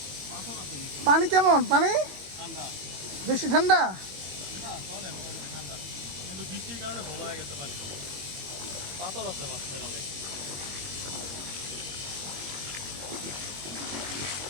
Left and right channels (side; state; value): left; late; 21 ms